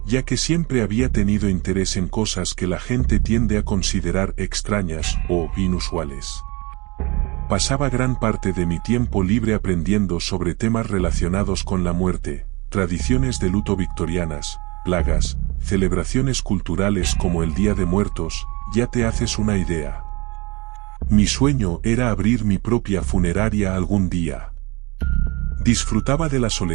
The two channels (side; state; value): left; quieter; 25.9 dB